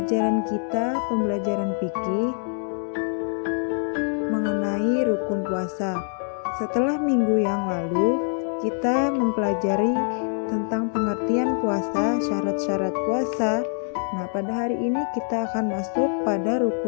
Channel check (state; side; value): silent; right; 58 dB below the other